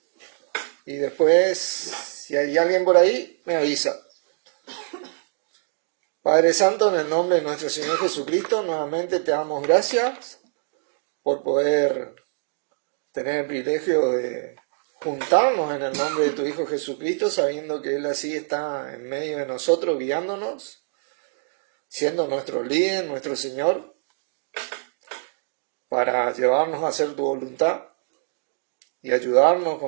Y después, si hay alguien por ahí, me avisa. Padre Santo, en el nombre de nuestro Señor Jesucristo, nuevamente te damos gracias por poder tener el privilegio de juntarnos en el nombre de tu Hijo Jesucristo, sabiendo que Él así está en medio de nosotros, guiándonos, siendo nuestro líder, nuestro Señor, para llevarnos a hacer tu voluntad y ayudarnos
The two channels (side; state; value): left; silent; digital silence